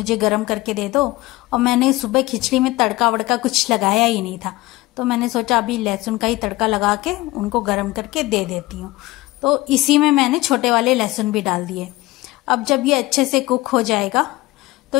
गर्म करके दे दो। और मैंने सुबह खिचड़ी में तड़का वड़का कुछ लगाया ही नहीं था, तो मैंने सोचा अभी लहसुन का ही तड़का लगा के उनको गर्म करके दे देती हूँ। तो इसी में मैंने छोटे वाले लहसुन भी डाल दिए। अब जब ये अच्छे से कुक हो जाएगा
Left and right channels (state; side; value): quieter; right; 19.2 dB